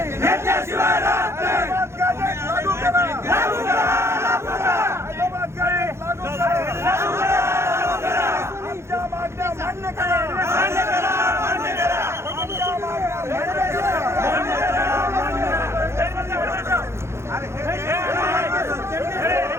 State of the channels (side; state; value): left; late; 0.13 ms